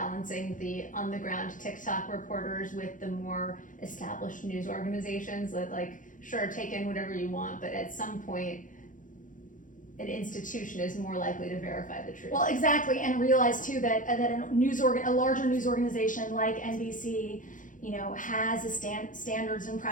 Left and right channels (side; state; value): right; late; 0.38 ms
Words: the on-the-ground TikTok reporters with the more established news organizations that, like, sure, take in whatever you want, but at some point, an institution is more likely to verify the truth? Well, exactly, and realize too that a larger news organization like NBC, has a standards and